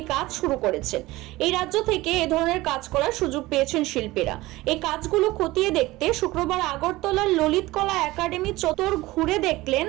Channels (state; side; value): quieter; left; 19.1 dB